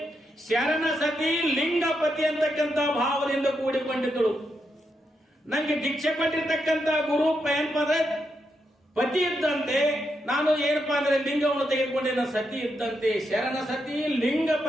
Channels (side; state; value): both; normal; correlation 0.83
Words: ಶರಣ ಸತಿ ಲಿಂಗಪತಿ ಅಂತಕ್ಕಂಥ ಭಾವದಿಂದ ಕೂಡಿಕೊಂಡಿದ್ದಳು. ನಂಗೆ ದೀಕ್ಷೆ ಕೊಟ್ಟಿರ್ತಕ್ಕಂಥ ಗುರು ಏನಪ್ಪ ಪತಿ ಇದ್ದಂತೆ, ನಾನು ಏನಪ್ಪಾ ಅಂದ್ರೆ ಲಿಂಗವನ್ನು ತೆಗೆದುಕೊಂಡಿನ ಸತಿ ಇದ್ದಂತೆ. ಶರಣ ಸತಿ